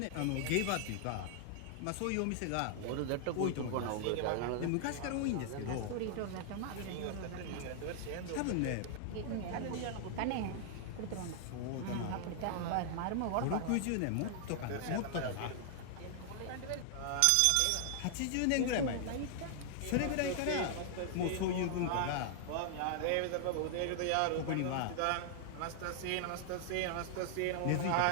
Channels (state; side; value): different; both; correlation 0.00